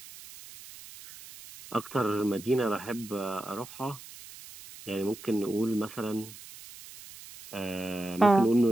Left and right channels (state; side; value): noise; right; hiss, 17 dB below the sound